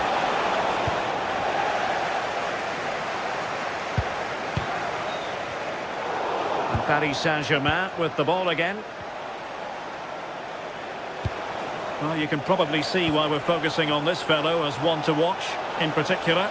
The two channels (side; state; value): both; identical; correlation 1.00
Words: And Paris Saint-Germain with the ball again. Well, you can probably see why we're focusing on this fellow as one to watch in particular.